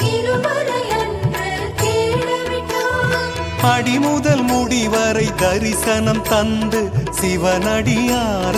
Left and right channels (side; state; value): both; identical; correlation 1.00